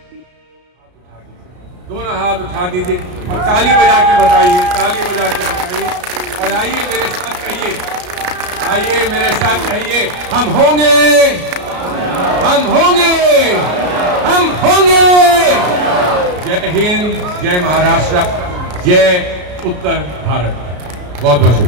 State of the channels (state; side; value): late; left; 33 ms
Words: दोनों हाथ उठा दीजिए और ताली बजा के बताइए, ताली बजा के बताइए। और आइए मेरे साथ कहिए, आइए मेरे साथ कहिए, हम होंगे, हम होंगे, हम होंगे। जय हिंद, जय महाराष्ट्र, जय उत्तर भारत। बहुत बहुत